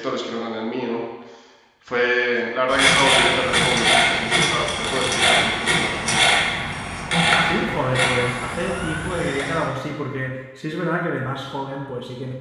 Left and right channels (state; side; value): identical; both; correlation 1.00